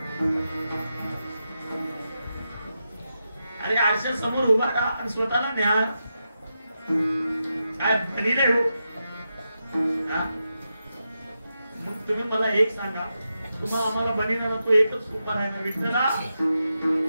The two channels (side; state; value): both; inverted; correlation -0.88